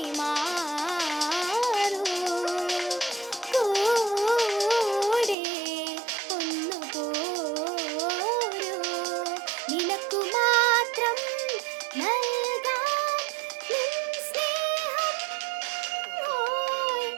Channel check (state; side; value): drops out; left; at 5.4 s